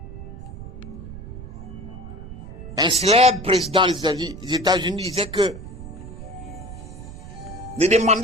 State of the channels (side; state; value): right; noise; rumble, 12 dB below the sound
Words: Un célèbre président des États-Unis disait que ne